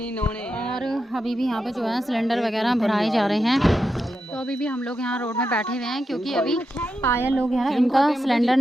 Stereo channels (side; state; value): both; normal; correlation 0.87